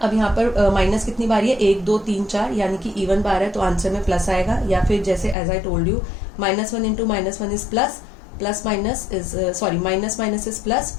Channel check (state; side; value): drops out; right; at 5.4 s